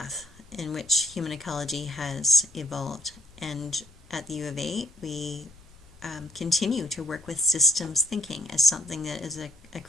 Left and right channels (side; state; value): left; noise; rumble, 24 dB below the sound